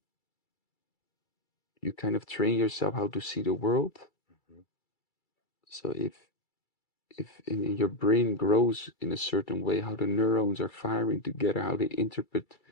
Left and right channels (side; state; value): right; late; 2.3 ms